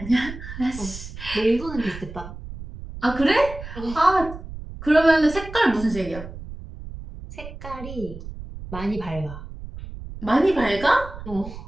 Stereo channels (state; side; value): noise; right; rumble, 12 dB below the sound